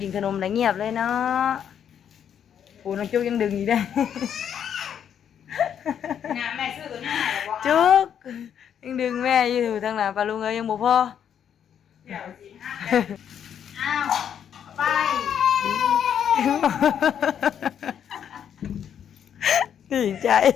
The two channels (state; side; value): quieter; right; 8.8 dB